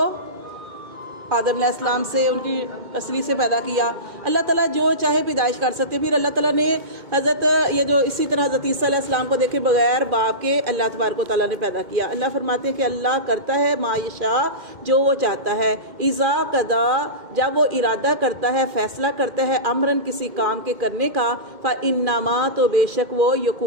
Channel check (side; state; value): left; late; 2.2 ms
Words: آدم علیہ السلام سے ان کی اصلی سے پیدا کیا۔ اللہ تعالیٰ جو چاہے پیدائش کر سکتے۔ پھر اللہ تعالیٰ نے اسی طرح حضرت عیسیٰ علیہ السلام کو دیکھے بغیر باپ کے اللہ تبارک و تعالیٰ نے پیدا کیا۔ اللہ فرماتے ہیں کہ اللہ کرتا ہے ما یشاء جو وہ چاہتا ہے، اذا قضا جب وہ ارادہ کرتا ہے، فیصلہ کرتا ہے، امرن کسی کام کے کرنے کا، فانما تو بے شک وہ